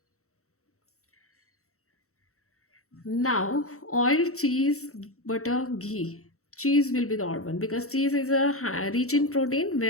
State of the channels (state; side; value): late; right; 0.64 ms